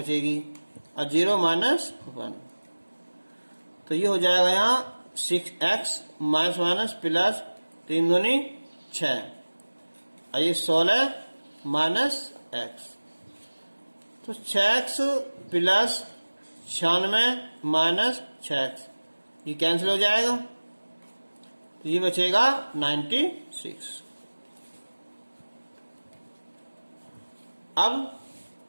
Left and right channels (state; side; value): inverted; both; correlation -1.00